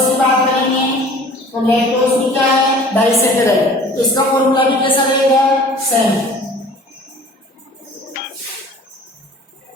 की बात करेंगे तो लैक्टोज भी क्या है? डाइसैकेराइड। तो इसका फॉर्मूला भी कैसा रहेगा? सेम।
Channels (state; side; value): normal; both; correlation 0.47